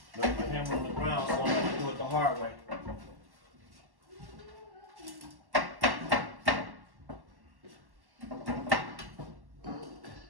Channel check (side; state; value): left; late; 1.1 ms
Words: Left my hammer on the ground, so I'm going to do it the hard way.